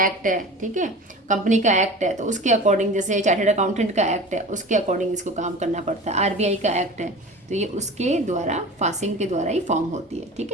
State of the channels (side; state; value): both; normal; correlation 0.36